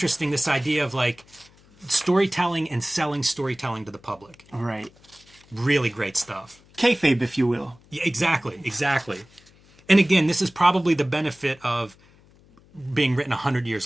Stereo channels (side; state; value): left; noise; hum, 28 dB below the sound